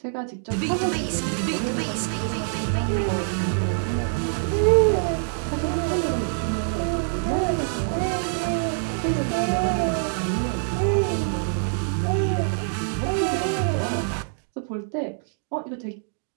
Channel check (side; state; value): left; silent; digital silence